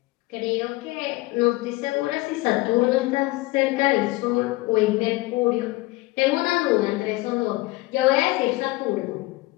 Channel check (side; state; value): right; quieter; 21.0 dB